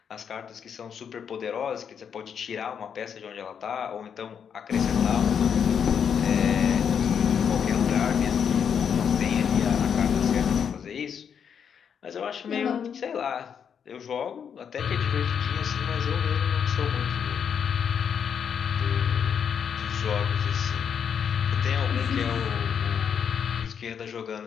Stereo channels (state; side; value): quieter; right; 7.5 dB